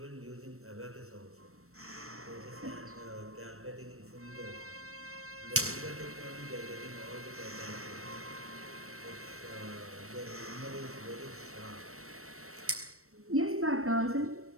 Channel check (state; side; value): late; left; 0.63 ms